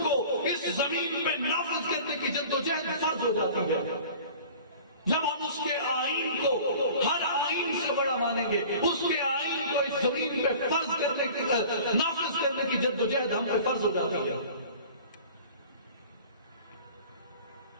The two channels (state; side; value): inverted; both; correlation -0.43